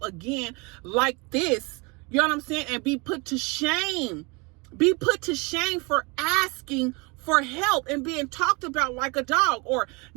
again like this. You know what I'm saying? And be put to shame. Be put to shame for asking for help and being talked about like a dog, or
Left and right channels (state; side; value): quieter; left; 28.7 dB